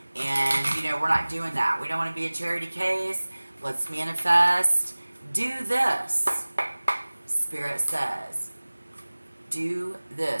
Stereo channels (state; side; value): inverted; both; correlation -1.00